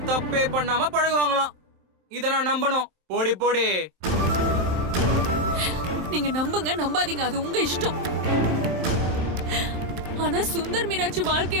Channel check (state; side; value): late; left; 27 ms